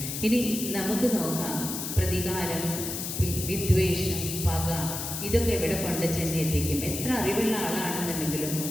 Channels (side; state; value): left; noise; hiss, 5 dB below the sound